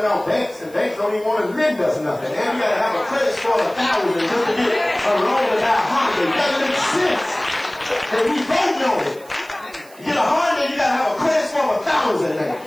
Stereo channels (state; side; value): noise; right; hiss, 24 dB below the sound